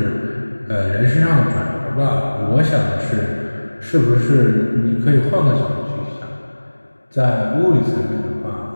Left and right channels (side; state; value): both; inverted; correlation -1.00